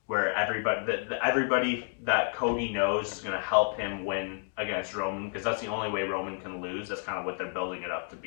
where everybody that Cody knows is going to help him win against Roman, because that's the only way Roman can lose. That's kind of what they're building it up to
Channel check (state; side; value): silent; right; 58 dB below the other